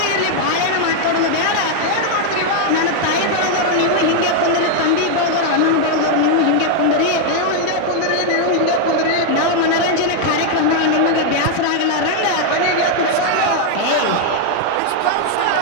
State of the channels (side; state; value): both; different; correlation 0.00